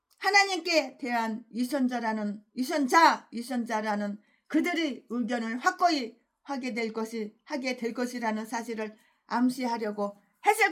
하나님께 대한 유선자라는 그들의 의견을 확고히 하게 될 것이라는 사실을 암시하려고 했을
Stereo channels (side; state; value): both; identical; correlation 1.00